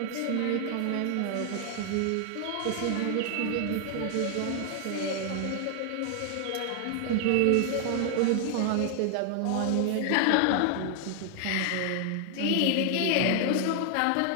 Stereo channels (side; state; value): both; different; correlation 0.00